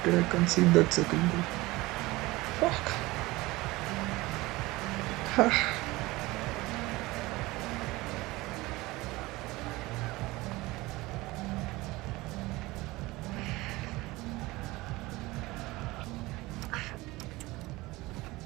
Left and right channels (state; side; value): quieter; left; 20.5 dB